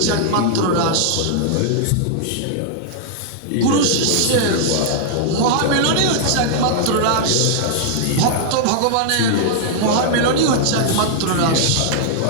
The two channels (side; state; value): both; different; correlation -0.01